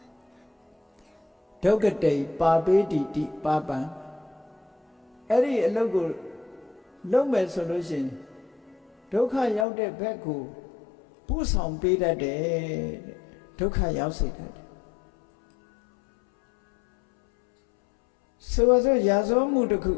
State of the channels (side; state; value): right; drops out; at 9.7 s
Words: ဒုက္ခတိပါပေတိတိပါပံအဲ့ဒီအလုပ်ကိုလုပ်မယ်ဆိုလို့ရှိရင်ဒုက္ခရောက်တဲ့ဘက်ကိုပို့ဆောင်ပေးတတ်တယ်တဲ့ဒုက္ခရောက်စေတတ်တယ်ဆိုပါစို့ရာဇဝမှုတစ်ခု